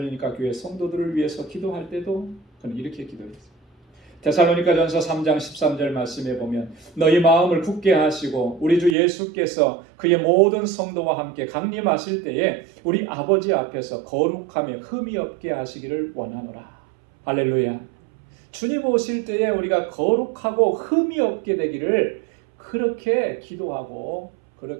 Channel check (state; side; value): drops out; left; at 9.0 s